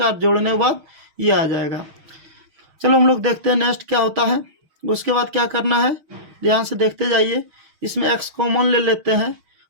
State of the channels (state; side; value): late; left; 6.4 ms